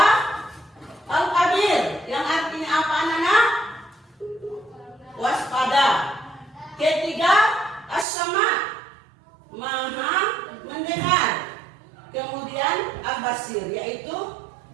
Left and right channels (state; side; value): drops out; left; at 8.1 s